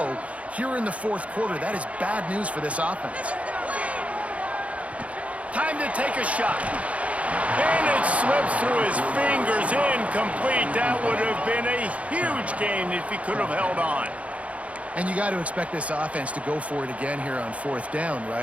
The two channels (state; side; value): late; left; 0.065 ms